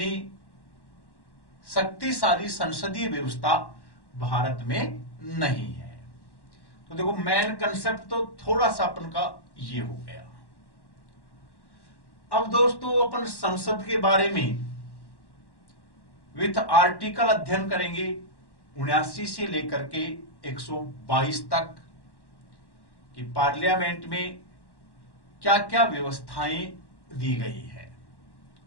शक्तिशाली संसदीय व्यवस्था भारत में नहीं है। तो देखो मेन कंसेप्ट तो थोड़ा सा अपन का ये हो गया। अब दोस्तों अपन संसद के बारे में विथ आर्टिकल अध्ययन करेंगे 79 से लेकर के 122 तक कि पार्लियामेंट में क्या क्या व्यवस्थाएं दी गई है।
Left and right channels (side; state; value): right; late; 1.1 ms